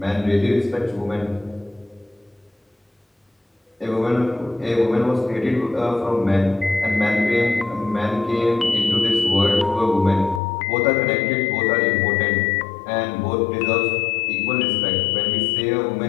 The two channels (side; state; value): right; drops out; at 10.4 s